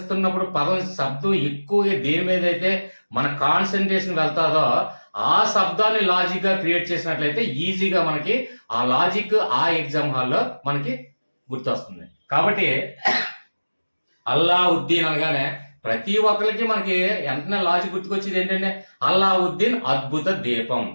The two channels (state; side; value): inverted; both; correlation -1.00